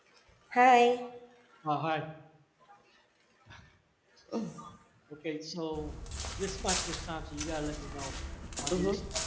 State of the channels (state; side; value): identical; both; correlation 1.00